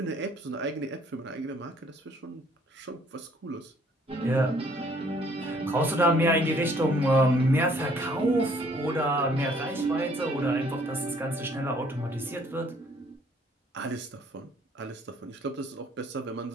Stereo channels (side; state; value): both; normal; correlation 0.61